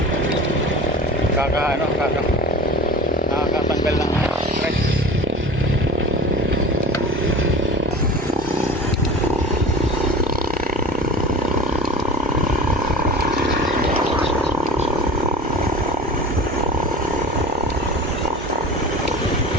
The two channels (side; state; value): both; normal; correlation 0.36